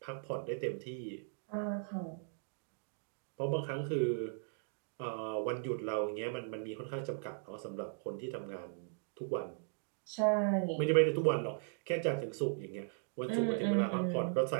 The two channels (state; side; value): silent; left; digital silence